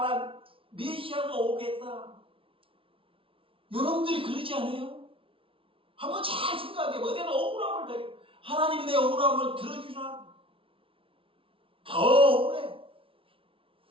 메시아가 오겠다. 여러분들이 그러지 않아요? 한번 잘 생각해봐. 내가 억울함을 당해. 하나님이 내 억울함을 들어주나? 더 억울해.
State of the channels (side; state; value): left; late; 0.26 ms